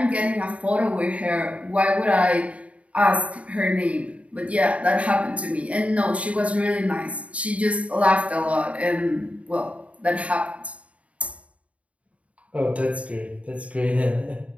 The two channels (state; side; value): late; left; 0.065 ms